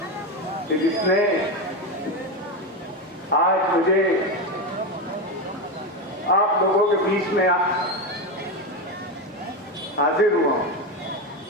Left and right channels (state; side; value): normal; both; correlation 0.15